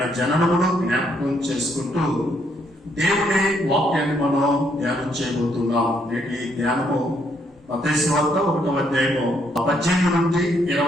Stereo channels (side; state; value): both; normal; correlation 0.72